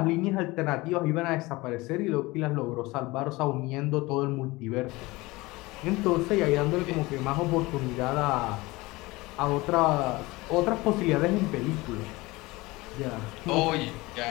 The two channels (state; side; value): quieter; right; 21.7 dB